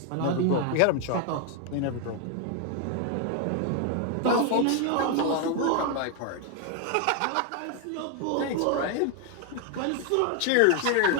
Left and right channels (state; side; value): different; both; correlation 0.01